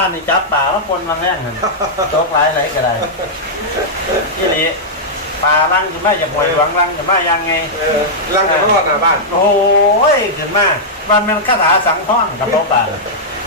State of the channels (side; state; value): both; normal; correlation -0.08